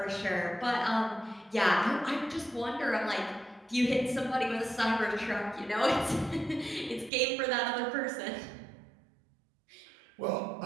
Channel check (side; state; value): left; drops out; at 7.1 s